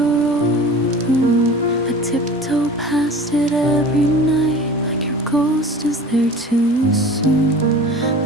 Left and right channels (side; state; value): both; normal; correlation 0.40